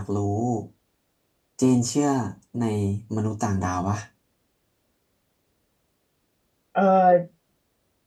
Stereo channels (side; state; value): both; identical; correlation 1.00